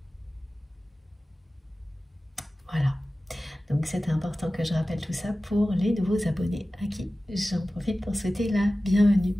Voilà. Donc c'est important que je rappelle tout ça pour les nouveaux abonnés à qui j'en profite pour souhaiter la bienvenue.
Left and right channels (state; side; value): normal; both; correlation 0.96